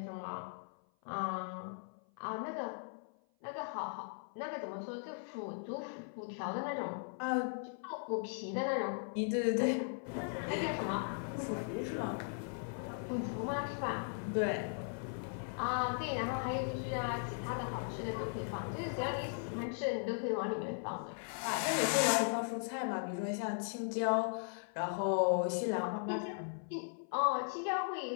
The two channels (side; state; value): right; silent; 52 dB below the other